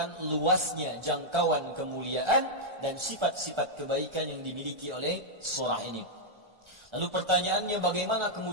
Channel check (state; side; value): late; left; 1.4 ms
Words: luasnya jangkauan kemuliaan dan sifat-sifat kebaikan yang dimiliki oleh surah ini. Lalu pertanyaannya, bagaimana